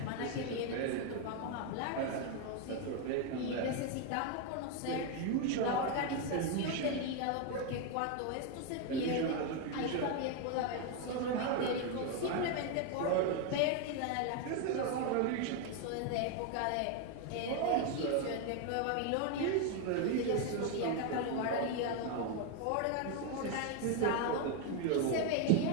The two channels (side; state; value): both; different; correlation 0.01